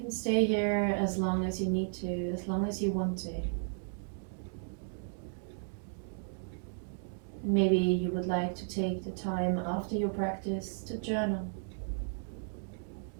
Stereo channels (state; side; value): silent; left; digital silence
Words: can stay here as long as you need to, as long as you want to. Maybe you would like to take the time after your practice to journal.